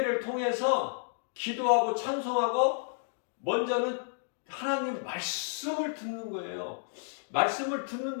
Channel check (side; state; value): right; silent; digital silence